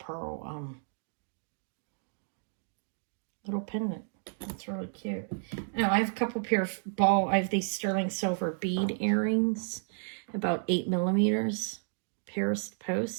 little pendant. That's really cute. Oh, I have a couple pair of I have these sterling silver bead earrings, about 8 millimeters. Paris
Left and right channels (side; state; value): left; silent; digital silence